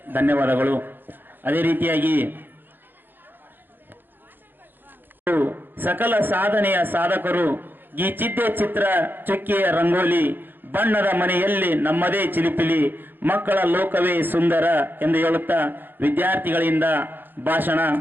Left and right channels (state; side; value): late; left; 0.094 ms